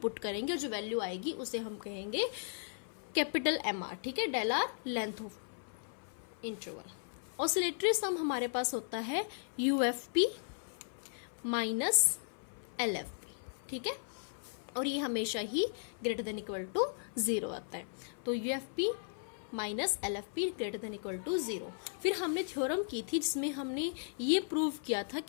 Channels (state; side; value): silent; right; 54 dB below the other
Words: करेंगे और जो वैल्यू आएगी उसे हम कहेंगे कैपिटल एम आर। ठीक है, del R length of interval. Oscillatory sum हमारे पास होता है यूएफपी माइनस एलएफपी। ठीक है, और ये हमेशा ही ग्रेटर देन इक्वल टू 0 आता है। तो UFP minus LFP greater than equal to 0। फिर हमने थ्योरम की थी जिसमें हमने ये प्रूव किया था